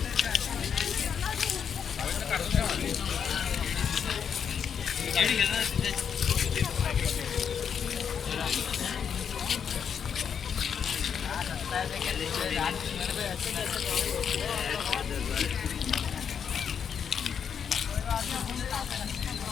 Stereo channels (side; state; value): right; quieter; 7.4 dB